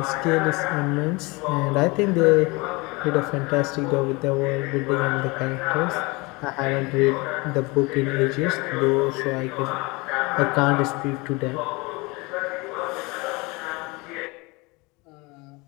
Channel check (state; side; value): quieter; right; 25.6 dB